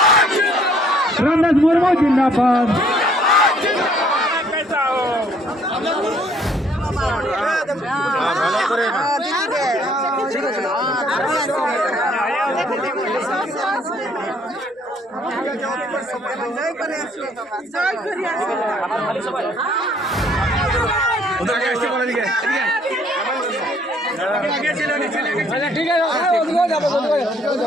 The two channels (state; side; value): normal; both; correlation 0.62